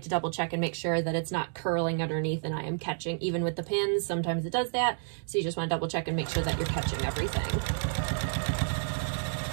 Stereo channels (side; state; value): left; silent; digital silence